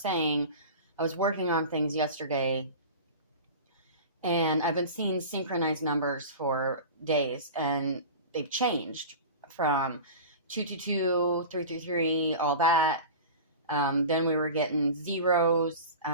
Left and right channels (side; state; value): both; inverted; correlation -0.33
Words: I was working on things yesterday, and I've been seeing synchronized numbers for days, and they've changed from 222, 333, all that. Then we were getting zeros.